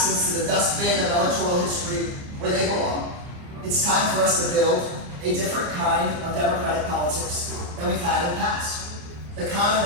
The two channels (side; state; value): left; late; 29 ms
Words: to the dustbin of electoral history where they belong, it's time for us to build a different kind of democratic politics than we've had in the past. The kind